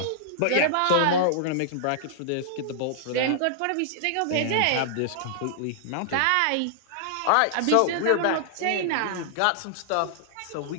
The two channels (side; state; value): both; different; correlation -0.01